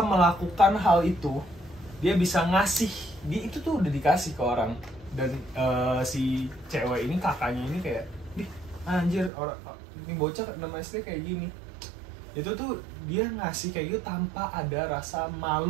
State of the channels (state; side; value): drops out; left; at 9.3 s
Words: melakukan hal itu. Dia bisa ngasih. Itu tuh udah dikasih ke orang. Dan si cewek ini, kakaknya ini kayak, "Ih, anjir, ini bocah 6 SD kayak gini." Itu tuh dia ngasih kayak gitu tanpa ada rasa